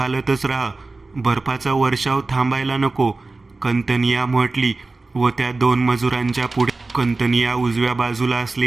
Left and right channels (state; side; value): quieter; left; 3.5 dB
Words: राहा. बर्फाचा वर्षाव थांबायला नको, कंतनिया म्हटली व त्या 2 मजुरांच्या पुढे कंतनिया उजव्या बाजूला